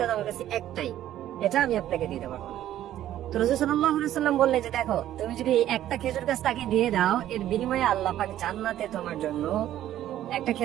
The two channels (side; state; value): left; quieter; 12.4 dB